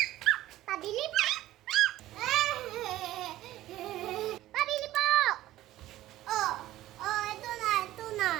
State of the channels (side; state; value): left; quieter; 15.0 dB